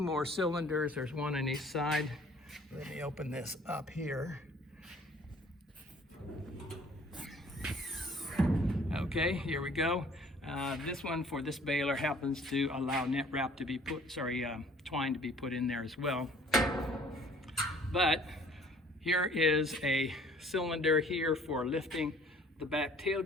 cylinders. There's one on each side. Let me open this up here. Okay, here we go. This one for this baler happens to allow net wrap to be twine to be put in there as well. But here is a cylinder here for lifting the back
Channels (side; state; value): both; normal; correlation 0.54